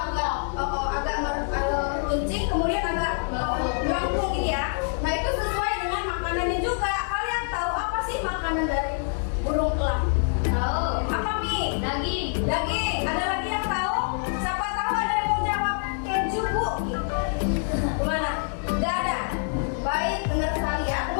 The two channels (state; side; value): silent; right; 56 dB below the other